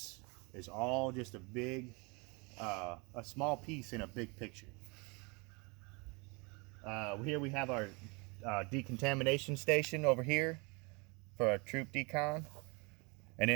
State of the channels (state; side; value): quieter; left; 29.9 dB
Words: is all just a big, a small piece in a big picture. Here we have our decontamination station over here for our troop decon. And